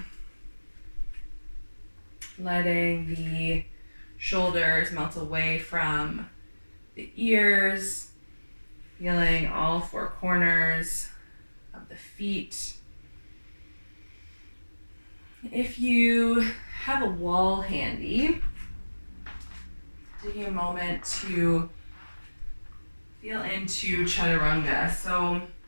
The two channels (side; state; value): both; inverted; correlation -1.00